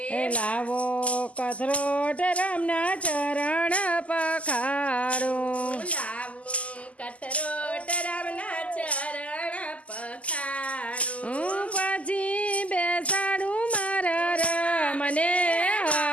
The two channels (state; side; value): late; right; 0.066 ms